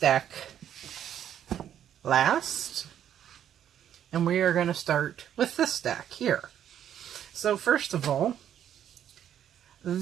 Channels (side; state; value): left; quieter; 10.0 dB